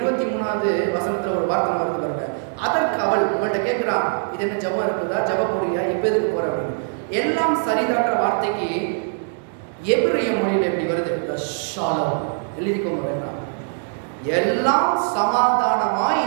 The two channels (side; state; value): left; silent; digital silence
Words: வசனத்துல ஒரு வார்த்தை வருது பாருங்க. அதற்கு அவள் இவள்கிட்ட கேட்கிறான், இது என்ன ஜபம் இருக்குதா, ஜப போறியா, எப்ப எதுக்கு போற அப்படின்னு. எல்லாம் சரிதான்ற வார்த்தைக்கு எபிரேய மொழியில் எப்படி வருது, ஷாலோம். எழுதிக்கோங்க வேண்டாம். எல்லாம் சமாதானமாய்